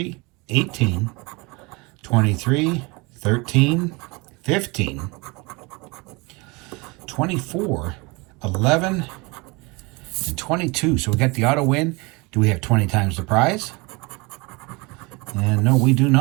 18, 23, 13, 15, 24, 11, and 22. So we got the auto win. Do we have 20 times the prize? And no, we do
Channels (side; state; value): left; quieter; 26.6 dB